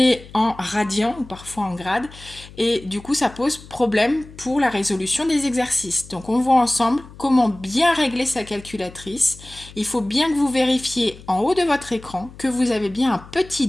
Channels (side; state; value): left; noise; hum, 19 dB below the sound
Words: en radian ou parfois en grade et du coup ça pose problème pour la résolution des exercices. Donc on voit ensemble comment bien régler sa calculatrice. Il faut bien que vous vérifiez en haut de votre écran que vous avez bien un petit